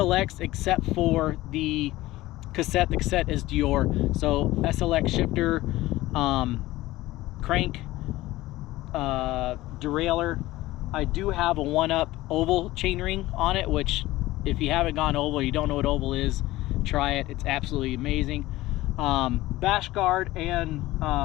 except for the cassette. The cassette is Dior. So SLX shifter, crank, derailleur. I do have a 1-up oval chainring on it, which if you haven't gone oval, you don't know what oval is, try it. It's absolutely amazing. Bash guard and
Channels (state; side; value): quieter; right; 17.5 dB